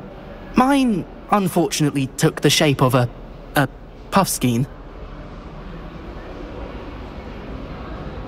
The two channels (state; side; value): identical; both; correlation 1.00